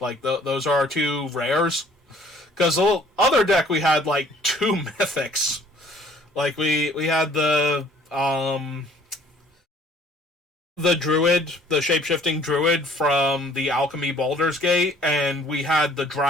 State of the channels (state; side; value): normal; both; correlation 0.56